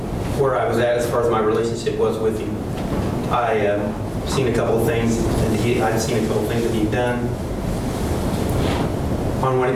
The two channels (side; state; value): both; identical; correlation 1.00